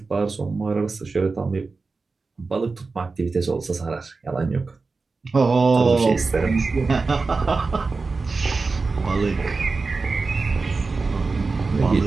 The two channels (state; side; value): quieter; left; 4.1 dB